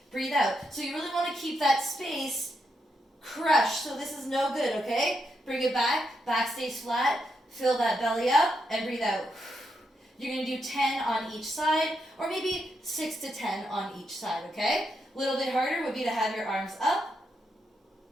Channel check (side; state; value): both; normal; correlation 0.82